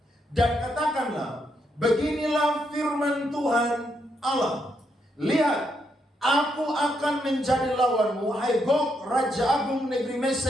Dan katakanlah, beginilah firman Tuhan Allah, lihat, aku akan menjadi lawanmu, hai Gog, Raja Agung negeri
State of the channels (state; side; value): normal; both; correlation 0.78